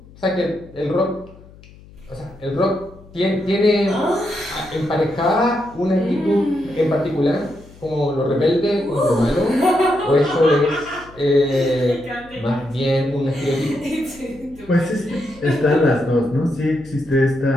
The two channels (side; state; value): left; noise; hum, 22 dB below the sound